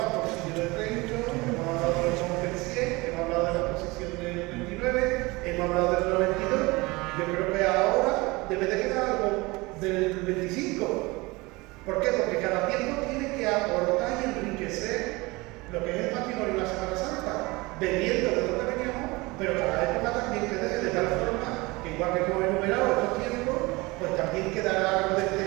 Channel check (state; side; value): quieter; left; 23.4 dB